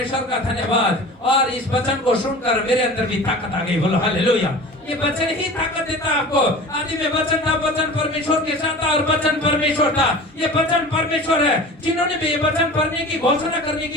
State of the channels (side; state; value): both; normal; correlation 0.38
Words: का धन्यवाद। और इस वचन को सुनकर मेरे अंदर भी ताकत आ गई। बोलो हालेलुया। ये वचन ही ताकत देता है आपको। आदि में वचन था, वचन परमेश्वर के साथ था और वचन परमेश्वर था। ये वचन परमेश्वर है। जिन्होंने भी ये वचन पढ़ने की घोषणा करने